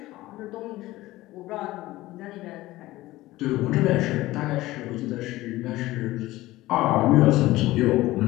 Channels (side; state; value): right; quieter; 17.5 dB